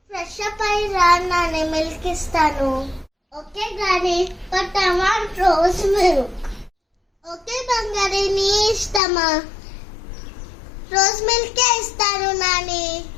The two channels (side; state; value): right; drops out; at 9.0 s